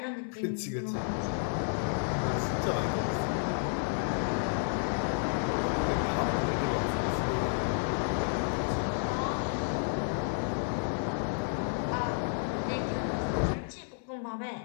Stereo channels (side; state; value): right; silent; 57 dB below the other